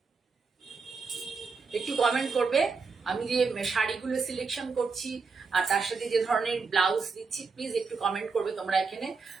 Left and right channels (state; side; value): quieter; left; 4.7 dB